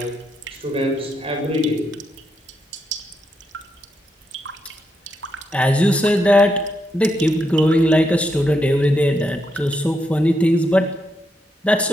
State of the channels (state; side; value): normal; both; correlation 0.81